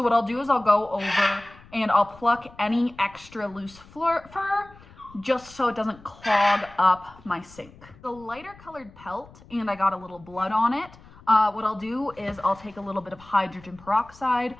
what I'll do is I'll go over and I'll pluck any extra loose fur just so it doesn't clog up my sink. The lighter colored pelt, and I got a little blood on it. What I'll do is I'll take a little bit of hydrogen peroxide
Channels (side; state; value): left; noise; rumble, 23 dB below the sound